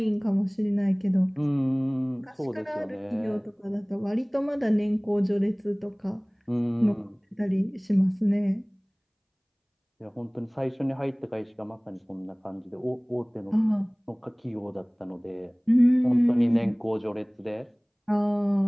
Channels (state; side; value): identical; both; correlation 1.00